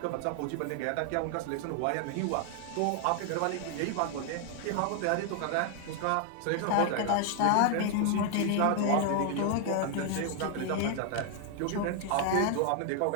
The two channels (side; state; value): both; different; correlation 0.00